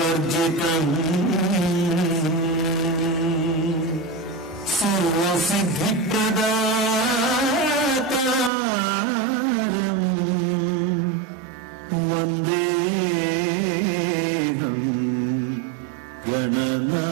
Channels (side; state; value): left; drops out; at 8.5 s